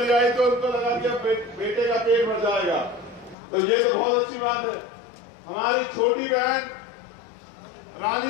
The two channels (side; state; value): right; drops out; at 3.4 s